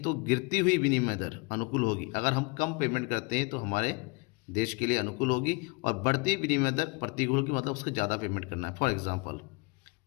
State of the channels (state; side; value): quieter; right; 28.5 dB